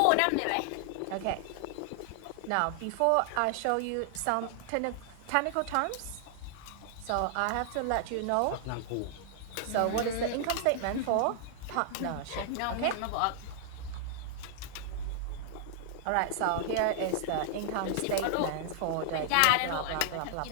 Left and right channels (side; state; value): both; different; correlation -0.01